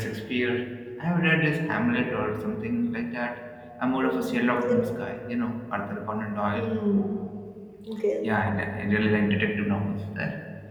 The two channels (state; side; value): identical; both; correlation 1.00